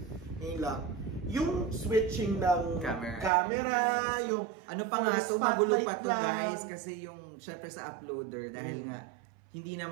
Ngayon lang. Yung switching ng camera, yung... Ano pa nga ito, magulo pa to guys, kasi yung, syempre sa uploader, dahil nga, hindi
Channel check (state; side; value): drops out; left; at 3.3 s